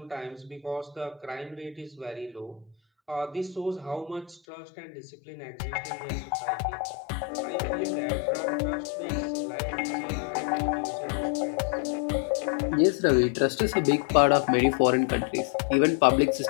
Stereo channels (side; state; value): right; drops out; at 4.4 s